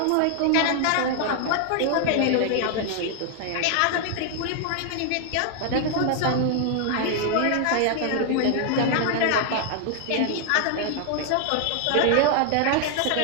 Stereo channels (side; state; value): both; different; correlation 0.00